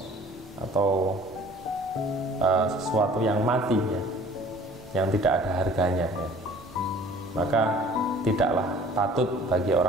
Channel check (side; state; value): both; normal; correlation 0.50